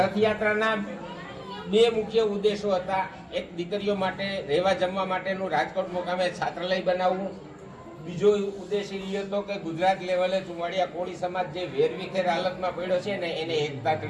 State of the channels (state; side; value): identical; both; correlation 1.00